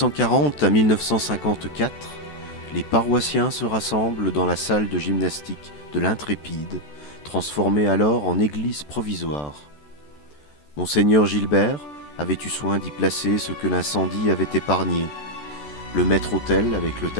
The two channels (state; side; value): late; right; 14 ms